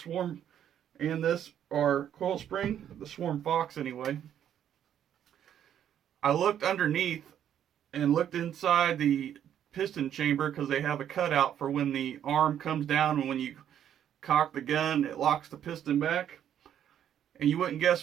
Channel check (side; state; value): left; quieter; 10.0 dB